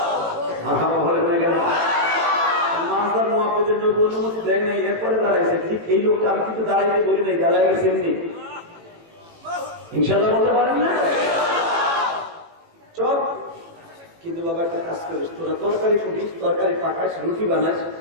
বলে না কেন মাজার মহাপদের নবী অনুমতি দেয় নাই, এরপরে দাঁড়াইছে। ঠিক এই লোকটা আমি কিন্তু দাঁড়াইতে বলি নাই, দাঁড়াই গেছে এমনি। ইনশাল্লাহ বলতে পারেন না চল। কিন্তু বাবা একটা কাজ করিস, তোরা তরকারি ফুটিস, তরকারি পাকাস, রুটি বানাস,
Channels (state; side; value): late; left; 18 ms